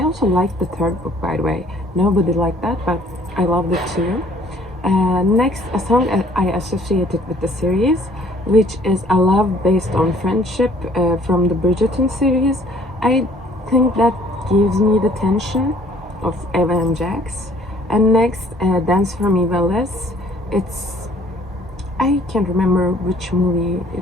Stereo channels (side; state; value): both; normal; correlation 0.58